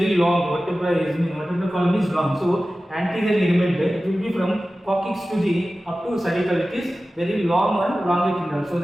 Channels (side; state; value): both; normal; correlation 0.95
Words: long. Vertebral column is long. So anterior ligament, it will be from coccyx to the up to cervical. It is very long and longitudinal. So